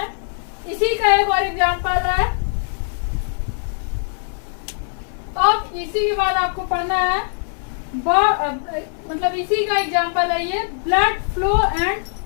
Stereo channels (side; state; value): right; silent; 58 dB below the other